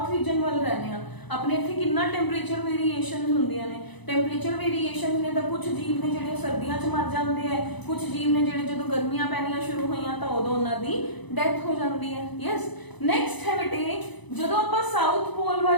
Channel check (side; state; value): right; late; 1.0 ms